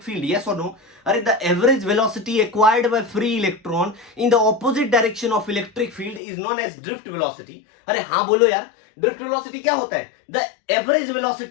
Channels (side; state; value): right; drops out; at 6.2 s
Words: field, yes or no? अरे the average velocity acquired by free electron in the opposite direction of electric field is known as drift velocity। अरे हाँ बोलो यार, drift velocity क्या होता है? The average